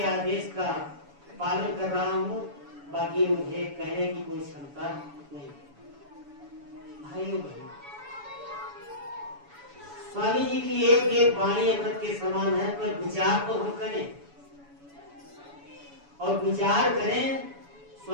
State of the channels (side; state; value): left; late; 7.0 ms